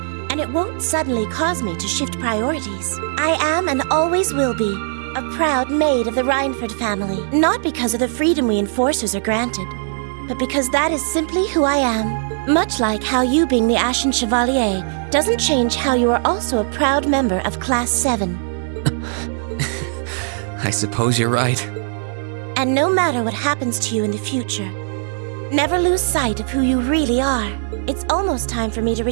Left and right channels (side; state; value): left; silent; digital silence